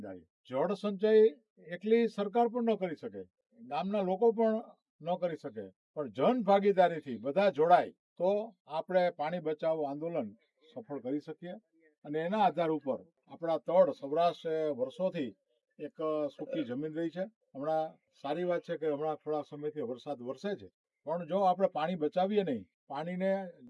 જળ સંચય એકલી સરકાર પણ ન કરી શકે, ગામના લોકો પણ ન કરી શકે, પણ જન ભાગીદારીથી બધા જોડાય તો આપણે પાણી બચાવો આંદોલન સફળ કરી શકીએ. અને એના આધાર ઉપર આપણા તળ સૌરાષ્ટ્ર વર્ષોથી એક સૂકી જમીન રહી છે. હમણાં સારી વાત છે કે હમણાં થોડા સમયથી વરસાદ વરસે છે, પણ જો આપણે પાણી બચાવીએ નહીં, પાણીને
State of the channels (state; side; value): identical; both; correlation 1.00